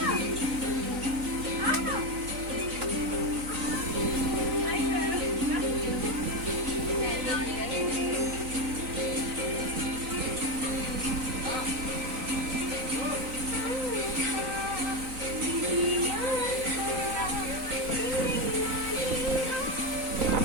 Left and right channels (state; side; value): late; left; 3.9 ms